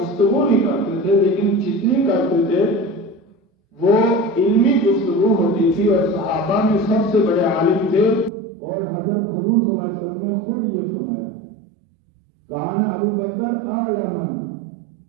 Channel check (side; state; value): left; drops out; at 8.3 s